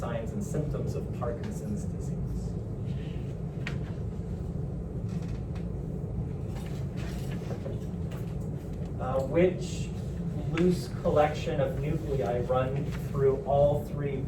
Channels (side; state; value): both; identical; correlation 1.00